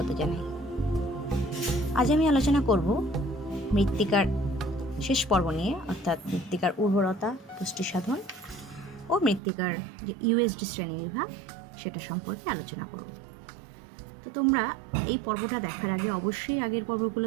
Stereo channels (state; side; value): drops out; left; at 9.4 s